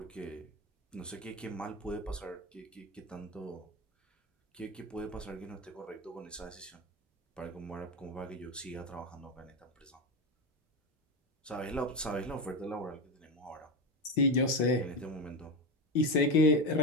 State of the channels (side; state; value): both; normal; correlation 0.18